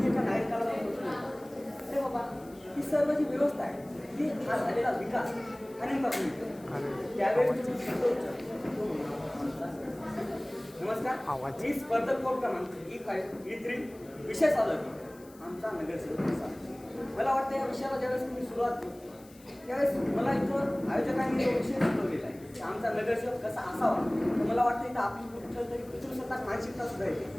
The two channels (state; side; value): noise; left; hiss, 25 dB below the sound